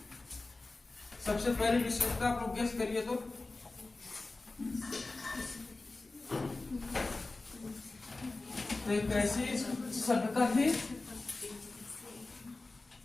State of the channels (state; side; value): quieter; right; 3.3 dB